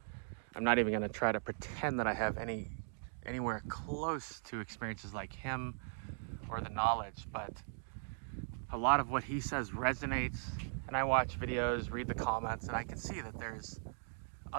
I'm not even going to try to pretend that I have anywhere close to experiences like him or the knowledge, but a lot of what he says resonates. And I watch videos, read the comments, and I can see that there's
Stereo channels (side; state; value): left; silent; digital silence